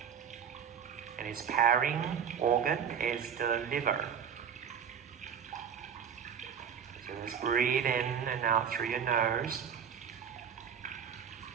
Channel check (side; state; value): left; quieter; 7.6 dB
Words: And its pairing organ is the liver. So just breathe in and out through your nose.